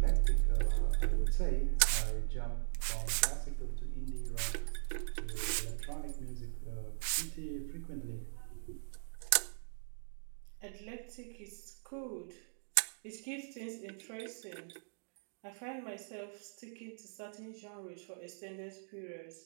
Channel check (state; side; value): silent; left; digital silence